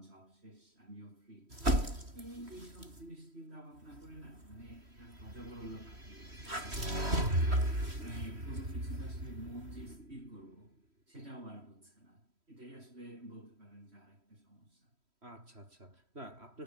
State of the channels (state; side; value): late; left; 3.1 ms